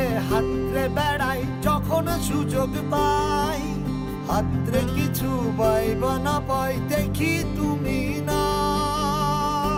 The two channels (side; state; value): both; identical; correlation 1.00